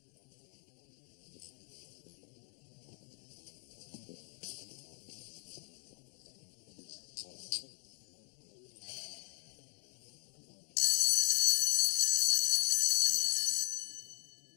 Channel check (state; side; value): quieter; right; 36.9 dB